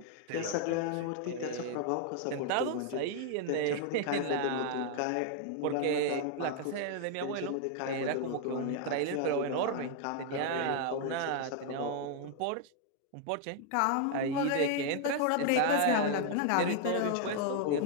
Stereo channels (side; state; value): both; different; correlation 0.00